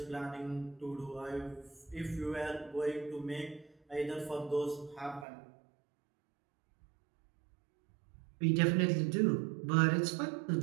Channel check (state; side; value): drops out; left; at 5.2 s